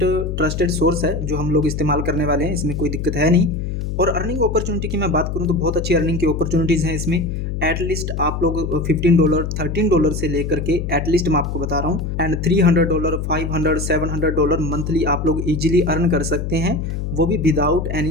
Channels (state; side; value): noise; left; hum, 3 dB below the sound